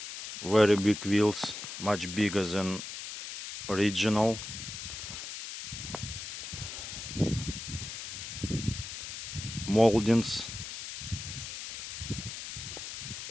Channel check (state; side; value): noise; left; hiss, 8 dB below the sound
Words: very big wheels, much bigger than original. Moldings,